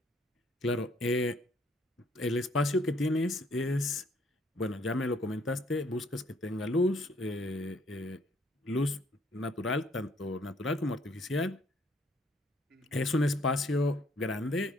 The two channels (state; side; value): normal; both; correlation 0.65